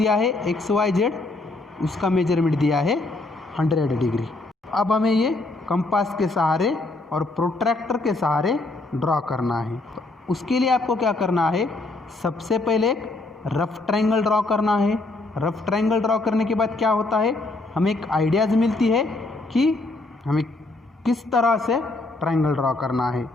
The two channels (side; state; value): right; quieter; 3.1 dB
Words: है एक्स वाई जेड, उसका मेजरमेंट दिया है 100 डिग्री। अब हमें ये कंपास के सहारे और प्रोट्रैक्टर के सहारे ड्रॉ करना है। तो उसके लिए आपको क्या करना है, सबसे पहले एक रफ ट्राइंगल ड्रॉ करना है। रफ ट्राइंगल ड्रॉ करने के बाद क्या होता है, हमें एक आइडियाज़ मिलती है कि हमें किस तरह से ट्राइंगल ड्रॉ करना है,